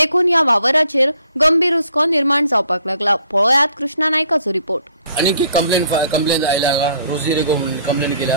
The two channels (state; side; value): inverted; both; correlation -0.62